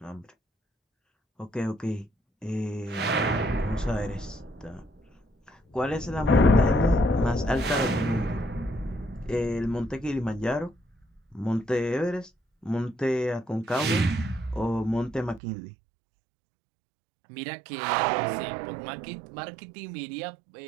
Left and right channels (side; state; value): left; drops out; at 15.4 s